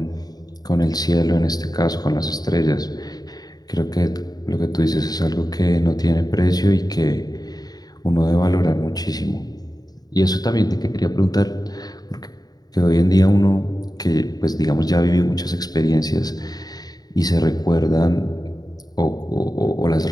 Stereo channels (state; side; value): late; right; 0.19 ms